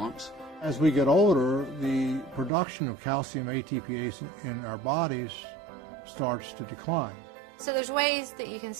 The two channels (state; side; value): drops out; left; at 2.5 s